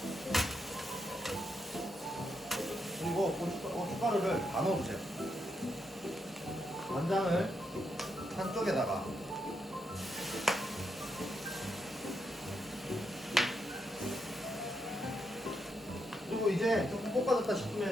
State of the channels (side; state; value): both; normal; correlation 0.81